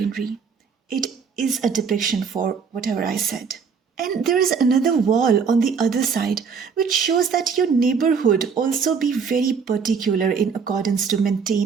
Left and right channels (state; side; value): quieter; left; 5.9 dB